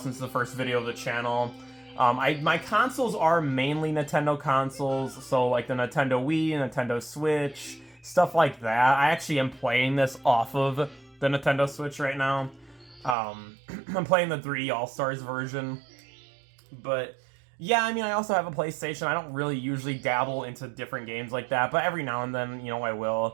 it's the first video of the channel. My consoles are mainly Nintendo consoles, so like the Nintendo Wii, Nintendo Switch, stuff like that. I actually am playing this off of the Nintendo Switch right now. I'm playing the 3D All-Stars version. But yeah, I mean, I also have a PlayStation. I don't really usually dabble into different games like that, but every now and then, you know, I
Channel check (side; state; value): left; drops out; at 13.2 s